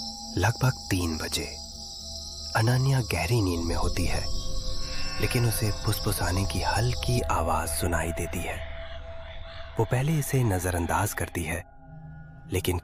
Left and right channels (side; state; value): both; identical; correlation 1.00